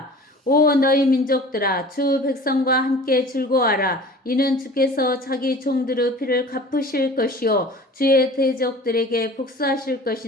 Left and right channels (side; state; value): both; normal; correlation 0.42